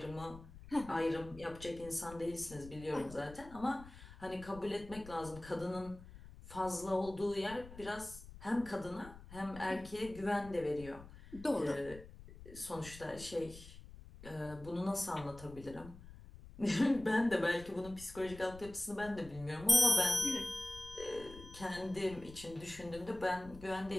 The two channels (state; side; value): noise; left; rumble, 16 dB below the sound